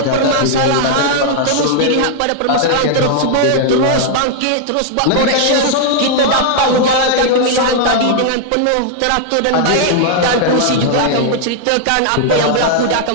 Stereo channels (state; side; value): different; both; correlation -0.01